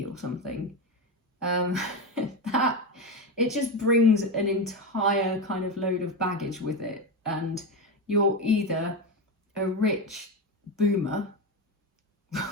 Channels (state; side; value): normal; both; correlation 0.15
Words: or something, that it just brings an entire kind of load of baggage with it, and you're either a rich boomer,